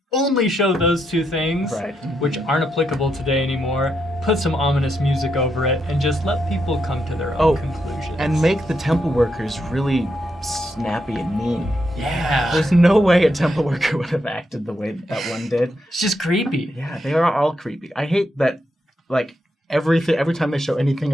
only show those two things, which aren't applicable today anymore. Put some ominous music over it and just let people come to their own conclusions. And make the temple workers really snappy and mean. Yeah. There's no way a temple worker would have acted the way that one did. It's just creepy. Yeah, they are all creepy. I hate that, like, every time they show anything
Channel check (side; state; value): both; normal; correlation 0.81